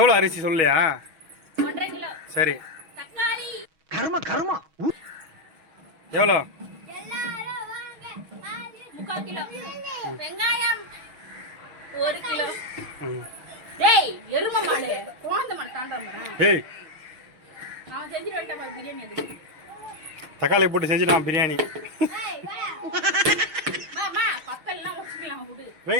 அரிசி சொல்லியா? 1.5 கிலோ. சரி. தக்காளி கர்மா எவ்வளோ? 3/4 கிலோ. வெங்காயம் 1 கிலோ. டேய் எரும மாடு கோந்த மாடு தாண்டற மரம். டேய் நான் செஞ்சு வரட்டா பாரு பிரியாணி அது. தக்காளி போட்டு செஞ்சிடலாம் பிரியாணி. ஏய் வா. மாமா பக்கல்லாம் வச்சுக்கலாம் விடு.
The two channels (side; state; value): left; late; 6.3 ms